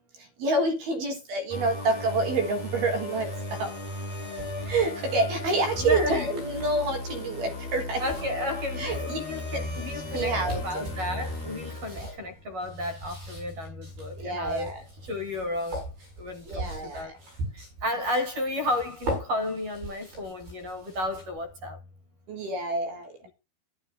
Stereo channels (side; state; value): left; late; 12 ms